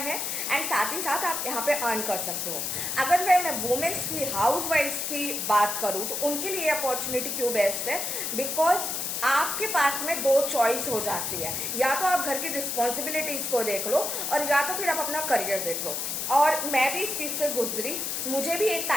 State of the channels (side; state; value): left; noise; hiss, 2 dB below the sound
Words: एंड साथ ही साथ आप यहाँ पे अर्न कर सकते हो। अगर मैं वुमेन्स की, हाउस वाइफ्स की बात करूँ तो उनके लिए अपॉर्चुनिटी क्यों बेस्ट है, बिकॉज आपके पास में 2 चॉइस हो जाती है, या तो आप घर की रिस्पॉन्सिबिलिटीज को देख लो और या तो फिर आप अपना करियर देख लो। और मैं भी इस चीज से गुजरी, मुझे भी एक